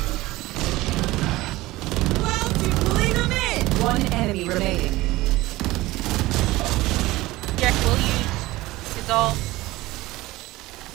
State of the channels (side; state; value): left; quieter; 18.8 dB